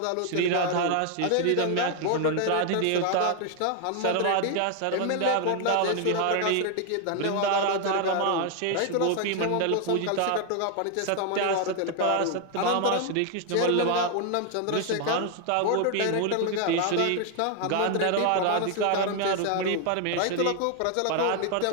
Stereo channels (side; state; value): both; different; correlation 0.00